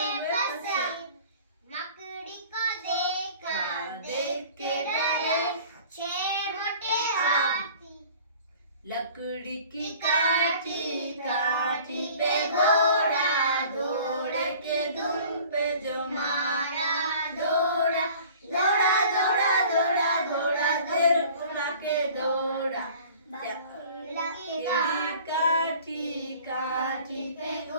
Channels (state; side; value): inverted; both; correlation -0.47